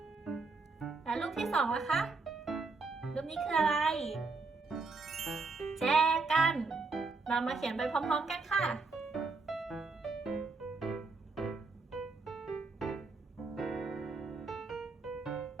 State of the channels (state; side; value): quieter; left; 3.9 dB